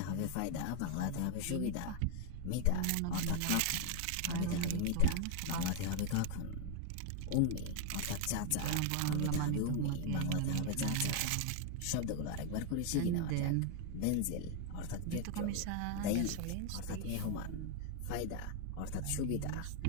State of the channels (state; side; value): different; both; correlation 0.00